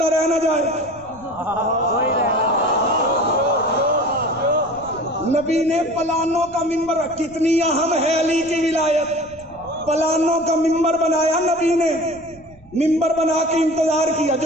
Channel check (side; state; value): right; noise; rumble, 25 dB below the sound